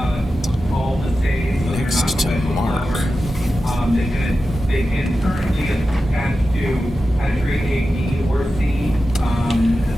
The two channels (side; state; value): both; normal; correlation 0.92